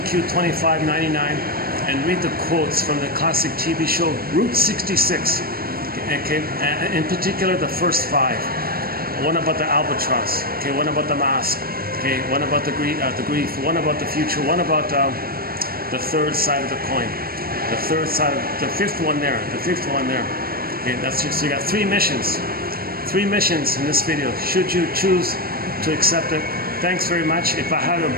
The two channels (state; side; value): late; left; 0.43 ms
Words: and read the quotes from the classic TV show Route 66. Okay, in particular the first 5. One about the albatross. Okay, one about the mask. Okay, one about the grief, one about the future, one about the third side of the coin. The third side, the fifth one there. Okay, that's just, so you got 3 missions. 3 missions in this video, should you choose to accept it. Thanks very much. If I had a